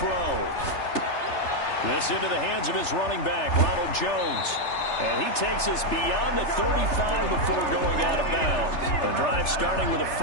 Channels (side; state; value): right; late; 3.3 ms